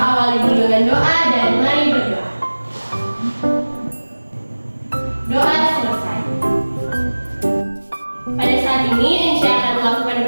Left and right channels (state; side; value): inverted; both; correlation -1.00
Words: dulu dengan doa dan mari berdoa. Doa selesai. Pada saat ini Enci akan melakukan